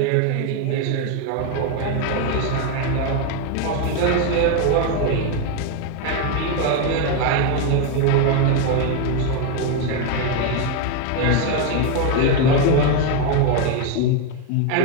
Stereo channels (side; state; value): both; different; correlation 0.01